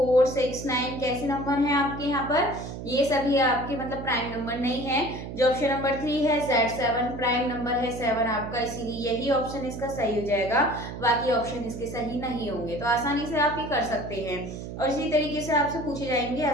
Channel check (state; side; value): noise; right; hum, 9 dB below the sound